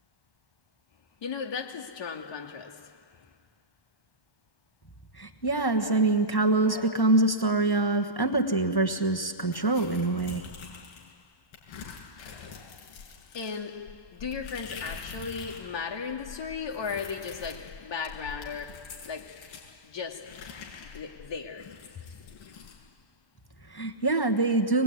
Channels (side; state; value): right; late; 1.1 ms